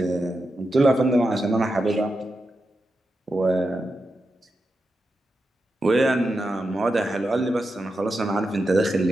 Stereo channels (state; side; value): normal; both; correlation 0.88